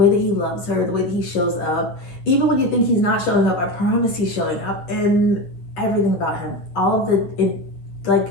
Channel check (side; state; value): right; late; 9.7 ms